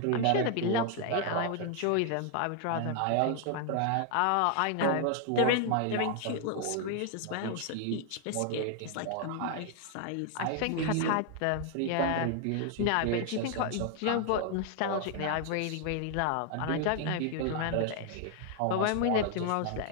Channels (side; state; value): both; different; correlation 0.00